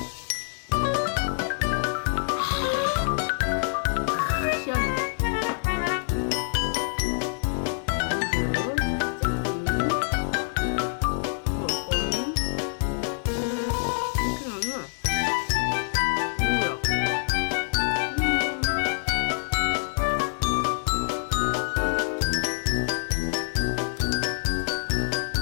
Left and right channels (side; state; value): right; silent; 61 dB below the other